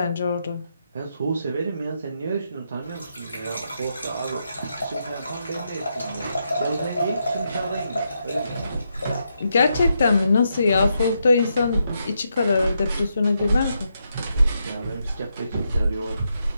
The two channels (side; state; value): both; inverted; correlation -0.82